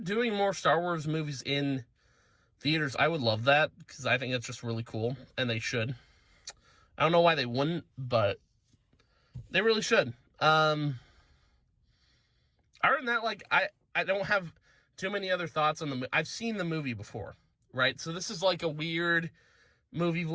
more Star Wars movies in theaters, I would love that, because I think that's just really cool, and they should. I don't know why they wouldn't, but they really should. Other than that, I don't have too many other thoughts on the movie. I've seen the movie before, right? So this is a weird movie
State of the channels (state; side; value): identical; both; correlation 1.00